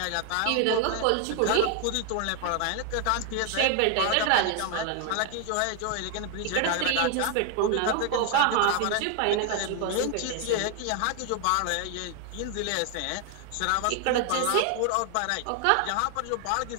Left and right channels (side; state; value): both; different; correlation 0.00